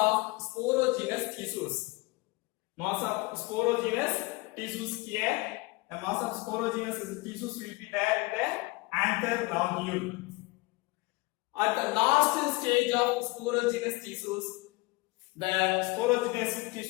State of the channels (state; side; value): quieter; right; 23.8 dB